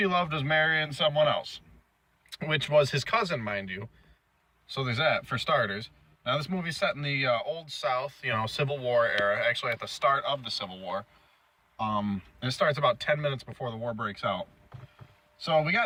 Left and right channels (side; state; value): both; identical; correlation 1.00